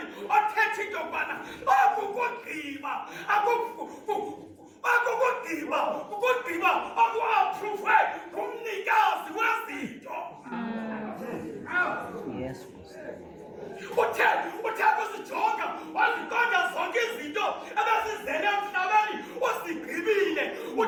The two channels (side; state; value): both; identical; correlation 1.00